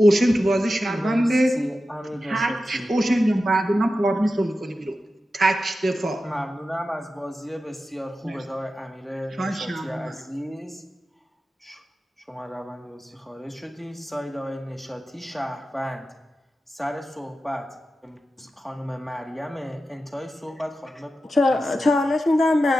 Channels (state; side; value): normal; both; correlation 0.92